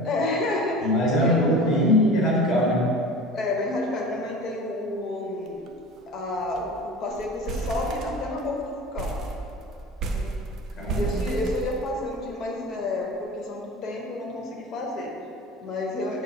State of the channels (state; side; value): normal; both; correlation 0.37